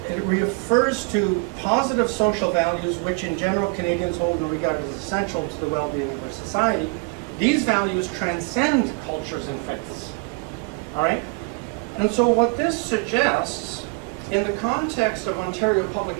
it refers to positive social values which in general Canadians hold and regard as essential to the well-being of our society. These values transcend cultures and faiths. All right? And so what this suggests, in the context of Ontario public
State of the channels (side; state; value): left; quieter; 31.4 dB